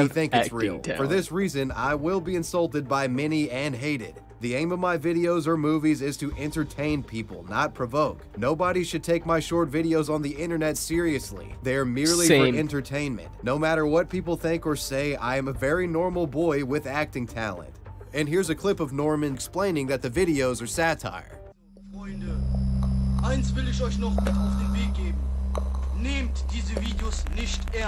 think it's real. For this reason, I will be insulted by many and hated. The aim of my videos or movies is to entertain people, not provoke. Nobody should take my short videos on the internet seriously. They are merely for entertainment. No matter what people think or say, I am a very normal boy with acting talent. And here's a clip of Norman explaining that the videos are satire. Freunde, eins will ich euch noch mit auf den Weg geben. Nehmt diese Videos nicht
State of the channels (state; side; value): identical; both; correlation 1.00